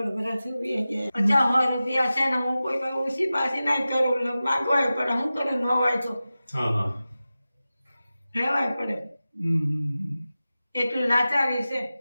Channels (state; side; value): inverted; both; correlation -0.95